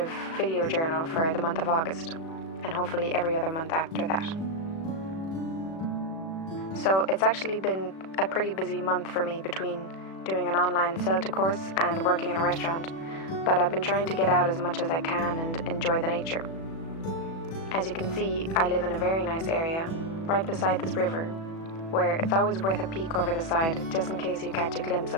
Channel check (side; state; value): right; late; 36 ms